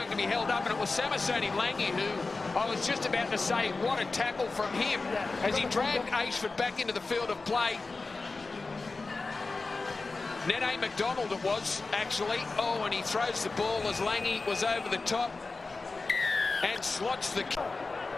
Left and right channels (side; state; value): right; quieter; 3.8 dB